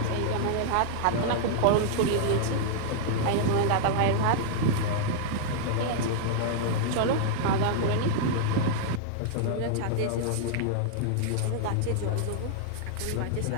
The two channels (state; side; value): different; both; correlation -0.01